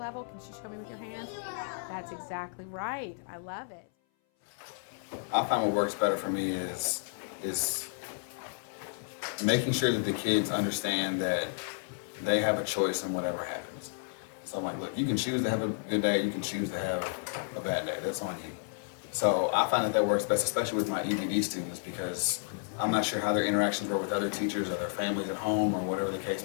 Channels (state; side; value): silent; right; 57 dB below the other